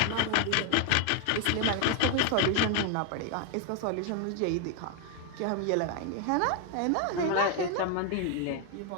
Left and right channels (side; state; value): both; different; correlation 0.00